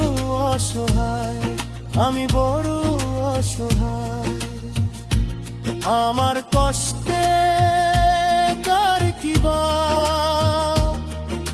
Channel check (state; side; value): identical; both; correlation 1.00